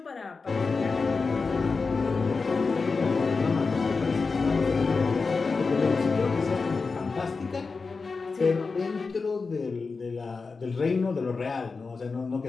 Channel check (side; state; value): right; quieter; 4.4 dB